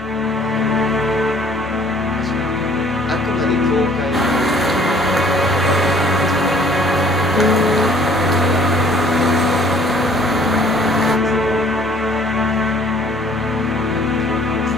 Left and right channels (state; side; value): normal; both; correlation 0.56